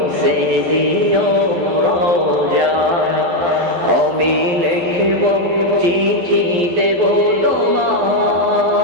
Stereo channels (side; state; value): left; late; 12 ms